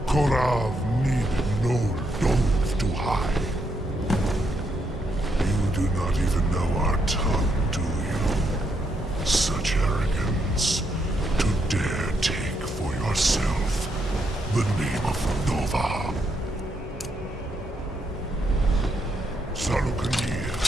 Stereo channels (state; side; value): normal; both; correlation 0.78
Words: korav need no dove to hide. You do not even know our tongue, do you? Such arrogance. To dare take for yourself the name of Nova. Salukanir,